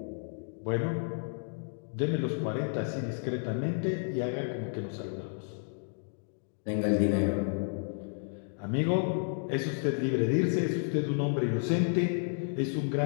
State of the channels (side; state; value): right; silent; digital silence